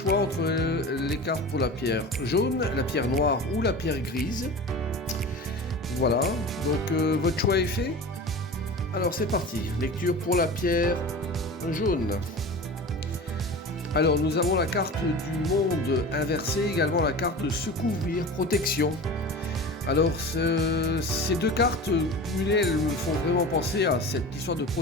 entre les cartes pour la pierre jaune, la pierre noire ou la pierre grise. Voilà, donc votre choix est fait. Alors c'est parti, lecture pour la pierre jaune. Alors nous avons la carte du monde inversé, également la carte de se couvrir, protection. Alors ces deux cartes cumulées, elles me font vraiment penser à cette histoire de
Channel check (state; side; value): normal; both; correlation 0.33